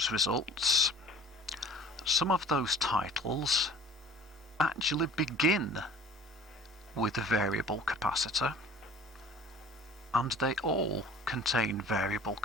results, some of those titles actually begin with a variable capacitor, and they all contain variable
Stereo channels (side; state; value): both; normal; correlation 0.46